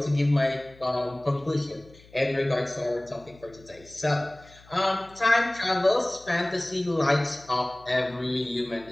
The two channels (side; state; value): left; noise; hum, 25 dB below the sound